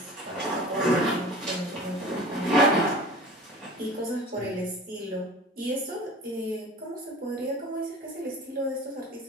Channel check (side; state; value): both; normal; correlation 0.39